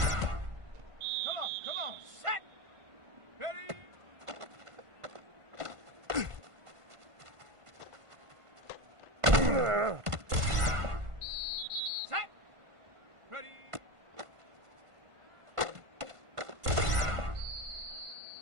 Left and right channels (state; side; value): late; left; 1.5 ms